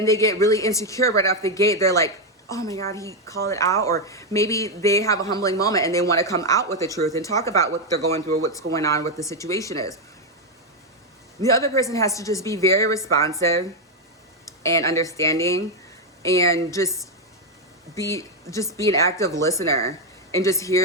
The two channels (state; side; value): normal; both; correlation 0.04